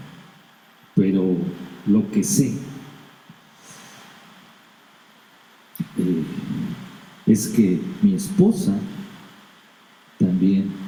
pero lo que sé es que mi esposa también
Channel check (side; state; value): both; identical; correlation 1.00